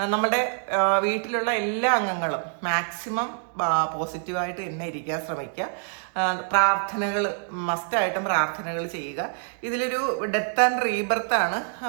നമ്മുടെ വീട്ടിലുള്ള എല്ലാ അംഗങ്ങളും മാക്സിമം പോസിറ്റീവായിട്ട് തന്നെ ഇരിക്കാൻ ശ്രമിക്കുക. പ്രാർത്ഥനകൾ മസ്റ്റായിട്ടും പ്രാർത്ഥനകൾ ചെയ്യുക. ഇതിലൊരു ഡെത്ത് ആൻഡ് റീബർത്ത് ആണ്.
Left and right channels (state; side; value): silent; left; 61 dB below the other